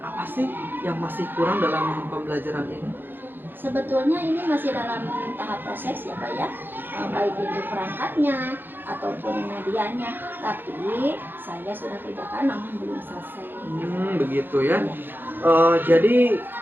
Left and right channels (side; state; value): left; late; 0.097 ms